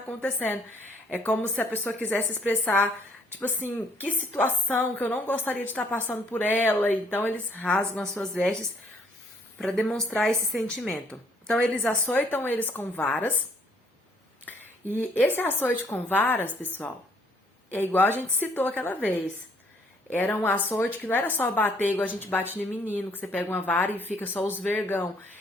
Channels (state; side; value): normal; both; correlation 0.64